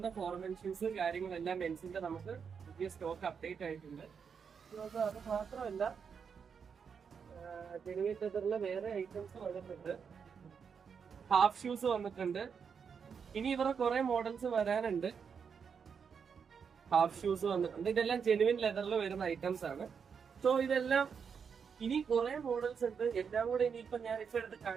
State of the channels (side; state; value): left; quieter; 6.5 dB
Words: ഫോർമൽ ഷൂസ് കാര്യങ്ങളെല്ലാം മെൻസിന്റെ നമുക്ക് പുതിയ സ്റ്റോക്ക് അപ്ഡേറ്റ് ആയിട്ടുണ്ട്. അത് മാത്രമല്ല ജെനുവിൻ ലെതറിലെ വേറെ ഐറ്റംസ് വന്നിട്ടുണ്ട്. ഹാഫ് ഷൂസ് വന്നിട്ടുണ്ട്. ഇനി ഇവരുടെ കുറെ മോഡൽസ് വരാനുണ്ട്. ഹാഫ് ഷൂസ് വന്നിട്ടുണ്ട്. ഇതെല്ലാം ജെനുവിൻ ലെതറിൽ വരുന്ന ഐറ്റംസ് ആണ്. സോ ഇതെല്ലാം ഇനി കുറെ മോഡൽസ് ഉണ്ട്. എല്ലാം കൂടെ ഇനിയിപ്പോ ഞാൻ ഇപ്പൊ എടുത്ത്